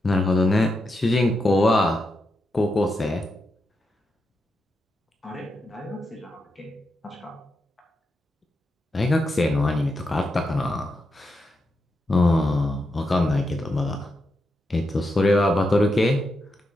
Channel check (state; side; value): normal; both; correlation 0.85